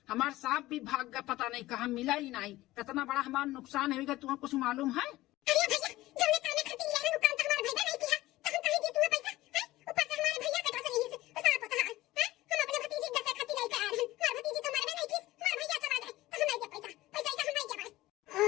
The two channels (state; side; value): quieter; right; 17.3 dB